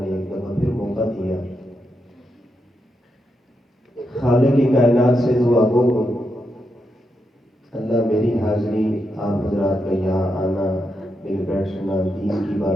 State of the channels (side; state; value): both; normal; correlation 0.84